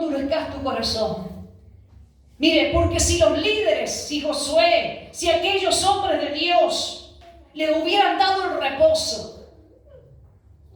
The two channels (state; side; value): identical; both; correlation 1.00